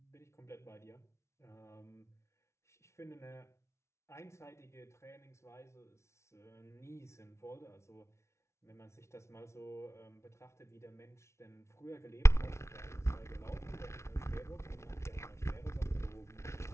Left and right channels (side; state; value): right; late; 0.13 ms